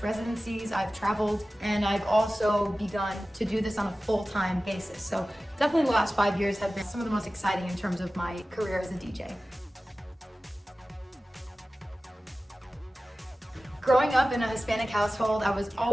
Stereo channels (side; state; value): both; normal; correlation 0.96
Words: residencies, I've traveled, and I've also begun to do this on a full-time basis. So definitely the last 5 years have been some of the most exciting in terms of my career as a DJ. Growing up in a Hispanic household, I was